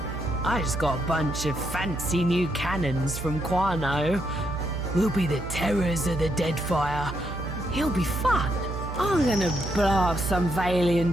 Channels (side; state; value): right; noise; hum, 7 dB below the sound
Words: I just got a bunch of fancy new cannons from Quarno. We'll be the terrors of the Deadfire. It'll be fun. I'm gonna blow up some Valian